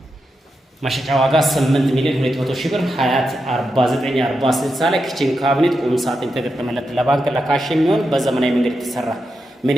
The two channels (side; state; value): both; normal; correlation 0.87